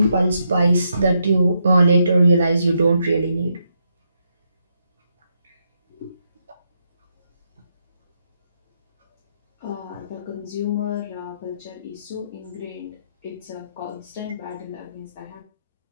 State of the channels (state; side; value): inverted; both; correlation -0.80